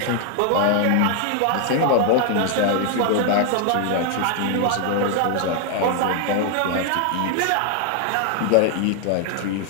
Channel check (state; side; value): different; both; correlation 0.00